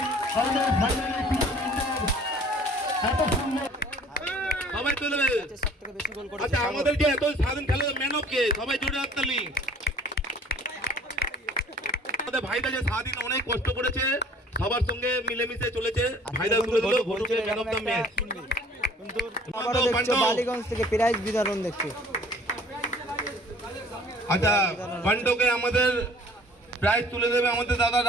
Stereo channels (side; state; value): both; normal; correlation 0.52